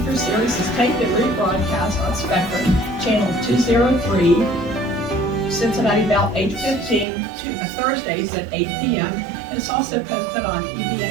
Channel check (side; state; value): left; drops out; at 7.1 s